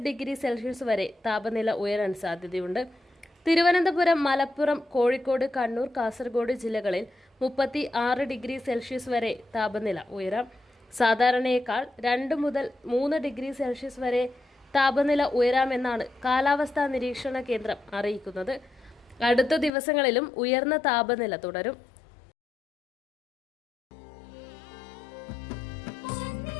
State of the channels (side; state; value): right; drops out; at 19.7 s